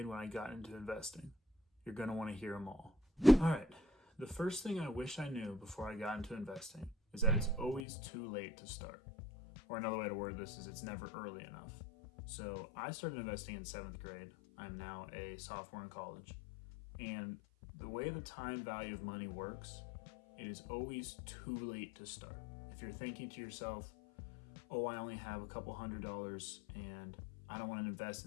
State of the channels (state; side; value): drops out; right; at 7.9 s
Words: when I got into investing. You're going to want to hear them all. All right, the first thing I wish I knew before I got into investing is that it's always too late to start. Or another way to word this is it's never early enough. So I started investing in 7th grade. I'm now a sophomore in college. And the way the time value of money works, it is always too late to start. If you're thinking to yourself, oh, I only have a couple $100 and I don't want to invest